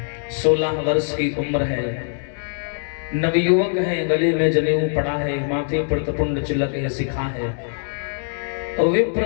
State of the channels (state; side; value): silent; right; digital silence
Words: 16 वर्ष की उम्र है, नवयुवक है, गले में जनेऊ पड़ा है, माथे पर तपुंड चिलक है, सिखा है और